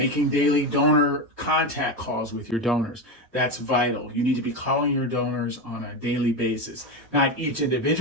daily donor contact calls with your donors. That's vital. You need to be calling your donors on a daily basis. Not each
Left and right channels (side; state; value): both; normal; correlation 0.16